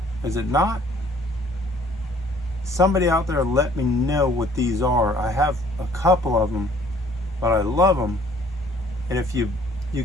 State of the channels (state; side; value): normal; both; correlation 0.57